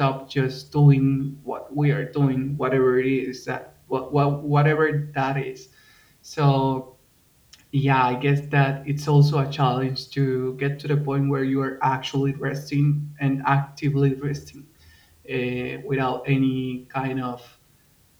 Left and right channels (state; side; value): identical; both; correlation 1.00